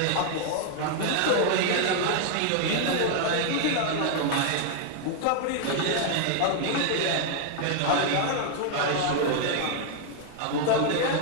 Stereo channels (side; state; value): both; different; correlation 0.00